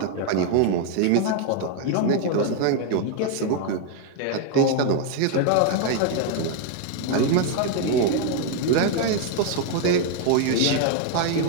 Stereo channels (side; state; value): both; different; correlation 0.00